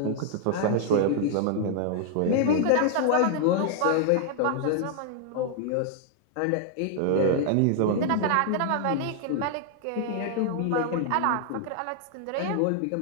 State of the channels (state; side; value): different; both; correlation 0.00